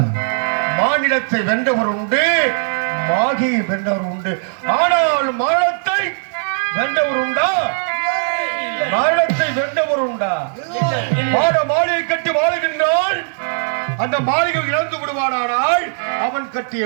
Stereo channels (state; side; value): silent; left; 65 dB below the other